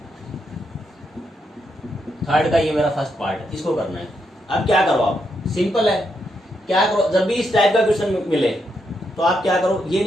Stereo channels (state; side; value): normal; both; correlation 0.80